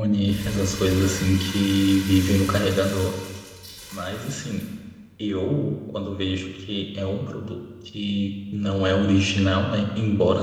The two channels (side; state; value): both; identical; correlation 1.00